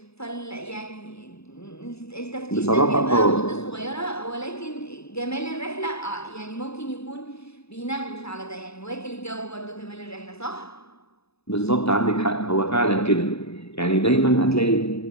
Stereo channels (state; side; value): late; right; 0.79 ms